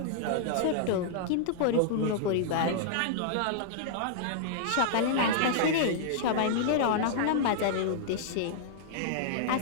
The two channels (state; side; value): different; both; correlation -0.01